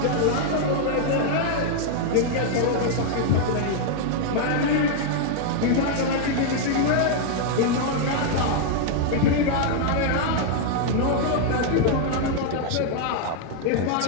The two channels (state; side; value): different; both; correlation -0.01